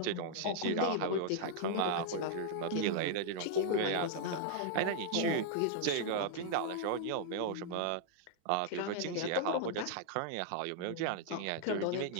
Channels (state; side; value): different; both; correlation -0.01